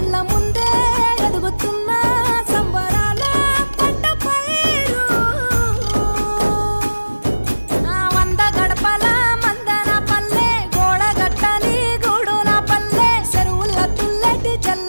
కళ్ళ ముందే ఎదుగుతున్న సంబరాల పంట పైరు వంద గడపల మందన పల్లె గోడగట్టని గూడుల పల్లె చెరువుల తుల్లటి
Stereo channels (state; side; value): inverted; both; correlation -1.00